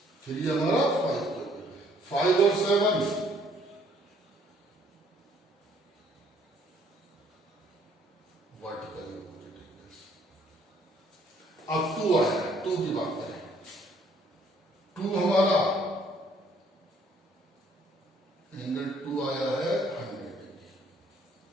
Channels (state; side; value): normal; both; correlation 0.63